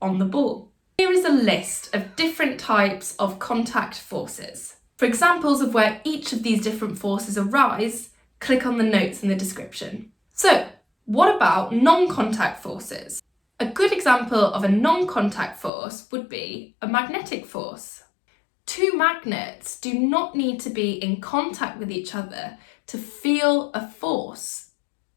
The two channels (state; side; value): drops out; right; at 15.7 s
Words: on the ball. Here is a list of different types of contact forces. For examples of where each of these different forces arise, click on the notes in the description. So, what about non-contact forces? A good example of a non-contact force would be a magnetic force. Two magnets do not need to be in contact with each other to feel a force